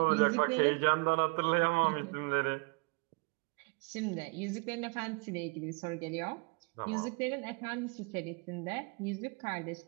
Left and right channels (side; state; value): left; quieter; 31.3 dB